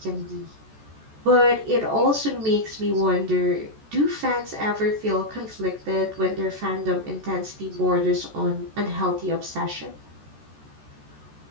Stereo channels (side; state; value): left; late; 14 ms